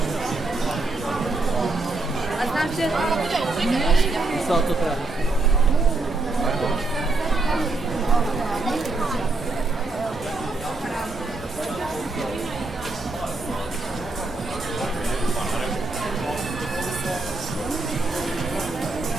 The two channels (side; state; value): left; quieter; 3.3 dB